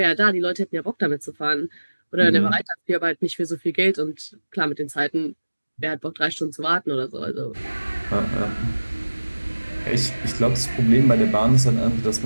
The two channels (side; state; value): both; inverted; correlation -1.00